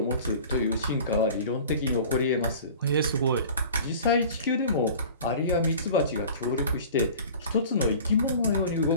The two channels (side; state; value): both; inverted; correlation -0.42